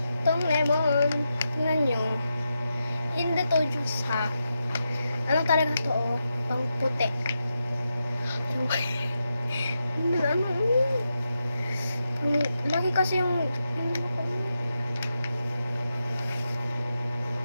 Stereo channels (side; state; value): both; inverted; correlation -0.87